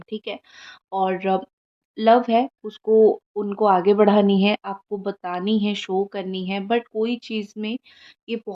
ठीक है? और लव है, उसको उनको आगे बढ़ानी है, आपको बतानी है, शो करनी है, बट कोई चीज़ में ये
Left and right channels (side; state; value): both; identical; correlation 1.00